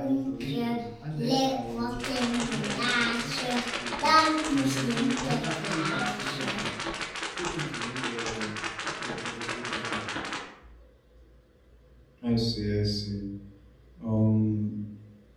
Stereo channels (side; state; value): both; identical; correlation 1.00